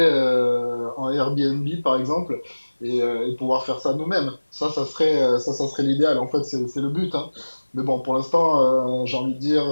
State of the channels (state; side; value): inverted; both; correlation -1.00